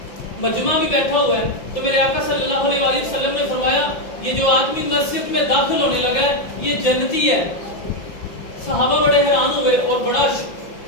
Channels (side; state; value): right; late; 5.8 ms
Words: مجمع بھی بیٹھا ہوا ہے. تو میرے آقا صلی اللہ علیہ وآلہ وسلم نے فرمایا یہ جو آدمی مسجد میں داخل ہونے لگا ہے یہ جنتی ہے. صحابہ بڑے حیران ہوئے اور بڑا